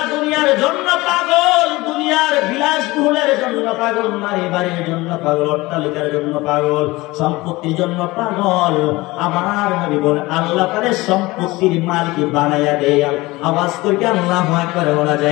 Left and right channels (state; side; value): quieter; right; 20.8 dB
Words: দুনিয়ার জন্য পাগল, দুনিয়ার বিলাসবহুলের জন্য পাগল, নারী বাড়ির জন্য পাগল, অট্টালিকার জন্য পাগল, সম্পত্তির জন্য পাগল, আমার নবী বলেন আল্লাহ তাদের সম্পত্তির মালিক বানাইয়া দেয়। আওয়াজ করে আল্লাহু আকবার বলা